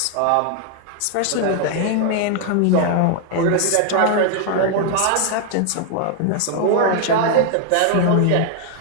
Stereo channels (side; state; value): both; different; correlation 0.00